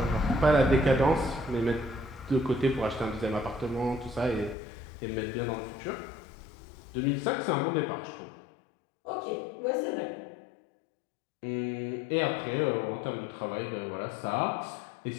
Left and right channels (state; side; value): drops out; right; at 4.5 s